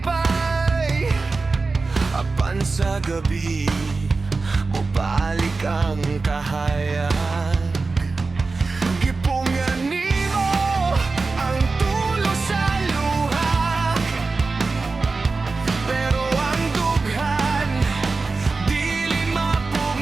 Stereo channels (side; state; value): left; quieter; 3.9 dB